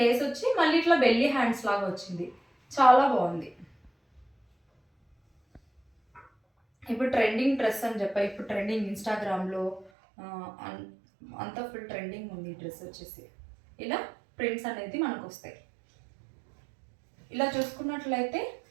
వచ్చి మళ్ళీ ఇట్లా బెల్లీ హ్యాండ్స్ లాగా వచ్చింది. చాలా బాగుంది. ఇప్పుడు ట్రెండింగ్ డ్రెస్ అని చెప్పా, ఇప్పుడు ట్రెండింగ్ ఇన్స్టాగ్రామ్లో అంతా ఫుల్ ట్రెండింగ్ ఉంది ఈ డ్రెస్ వచ్చేసి. ఇలా ప్రింట్స్ అనేది మనకు వస్తాయి. ఇలా చూసుకున్నట్లయితే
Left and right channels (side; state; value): left; drops out; at 9.9 s